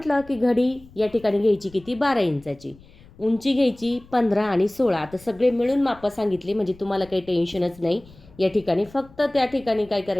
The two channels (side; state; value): left; noise; rumble, 24 dB below the sound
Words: की घडी या ठिकाणी घ्यायची किती 12 इंचाची, उंची घ्यायची 15 आणि 16. आता सगळे मिळून मापं सांगितले म्हणजे तुम्हाला काही टेन्शनच नाही. या ठिकाणी फक्त त्या ठिकाणी काय